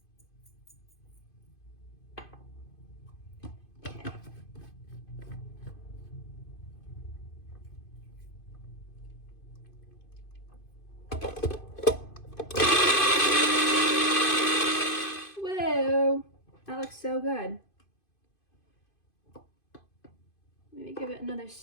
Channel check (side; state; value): right; late; 2.5 ms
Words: Whoa, that looks so good. Maybe give it another